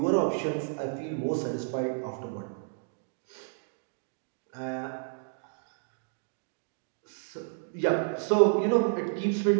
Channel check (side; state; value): left; silent; digital silence